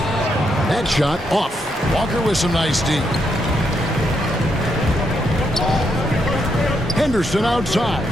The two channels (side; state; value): both; normal; correlation 0.79